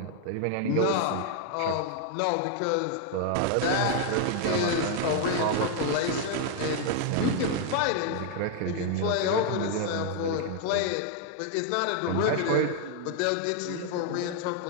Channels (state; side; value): different; both; correlation 0.00